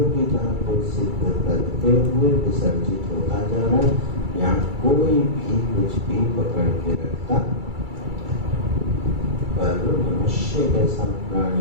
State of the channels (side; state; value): left; late; 2.3 ms